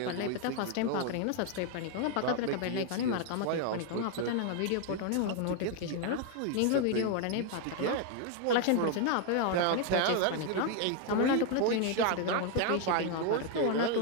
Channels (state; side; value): different; both; correlation 0.01